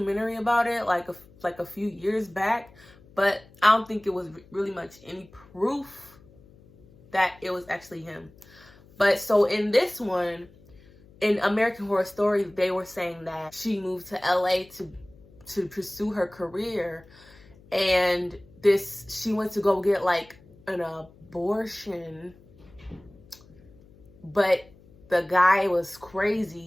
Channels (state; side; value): noise; left; hum, 25 dB below the sound